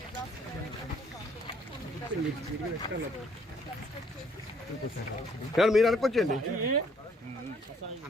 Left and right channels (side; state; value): both; normal; correlation 0.64